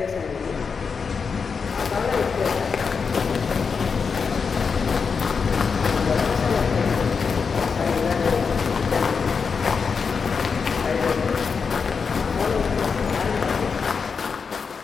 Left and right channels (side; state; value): right; quieter; 5.5 dB